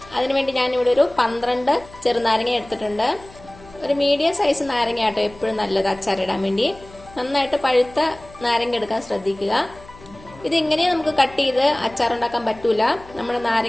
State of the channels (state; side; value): noise; left; hum, 22 dB below the sound